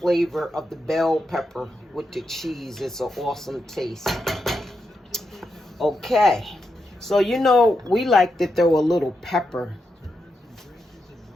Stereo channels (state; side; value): normal; both; correlation 0.85